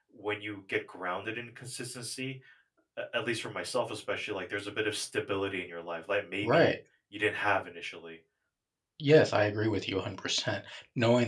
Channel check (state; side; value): identical; both; correlation 1.00